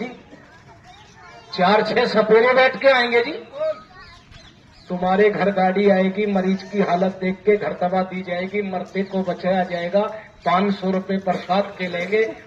4-6 सपेरे बैठ के आएंगे जी। तुम्हारे घर गाड़ी आएगी, मरीज की हालत देख के घर दवा दी जाएगी, मरते को बचाया जाएगा। 500 रुपए प्रसाद के लेंगे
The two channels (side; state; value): both; identical; correlation 1.00